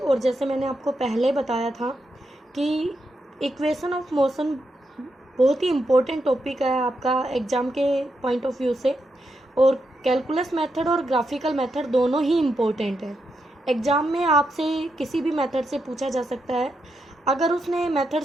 जैसे मैंने आपको पहले बताया था कि इक्वेशन ऑफ मोशन बहुत ही इम्पोर्टेंट टॉपिक है आपका एग्ज़ाम के पॉइंट ऑफ व्यू से, और कैलकुलस मेथड और ग्राफिकल मेथड दोनों ही इम्पोर्टेंट है। एग्ज़ाम में आपसे किसी भी मेथड से पूछा जा सकता है। अगर उसने मेथड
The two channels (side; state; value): both; normal; correlation 0.84